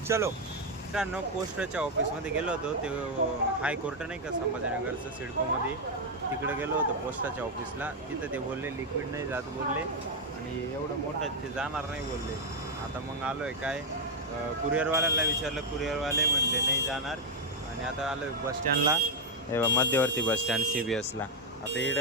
चलो मित्रांनो, पोस्टच्या ऑफिसमध्ये गेलो होतो. ते हायकोर्ट नाही का संभाजीनगरचं, सिडकोमध्ये, तिकडे गेलो होतो पोस्टाच्या ऑफिसला. तिथं ते बोलले लिक्विड नाही जात बोलले, आणि एवढं मोठं ते जाणार नाही बोलले. आता मग आलो आहे काय, कुरिअरवाल्याला विचारलं, कुरिअरवाले म्हणले नाही जाणार. आणि आता आलो आहे बसस्टँडला, मध्यवर्ती बसस्टँड CBSला. आता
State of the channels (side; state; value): both; normal; correlation 0.01